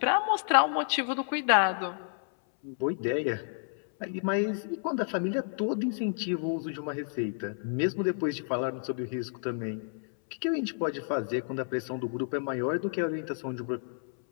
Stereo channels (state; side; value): silent; right; 58 dB below the other